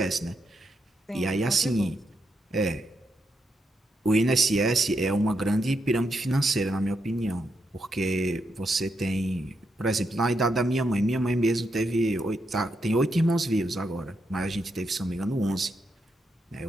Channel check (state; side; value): normal; both; correlation 0.82